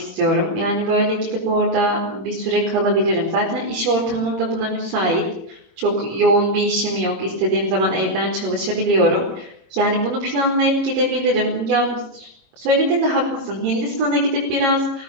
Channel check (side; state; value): left; late; 22 ms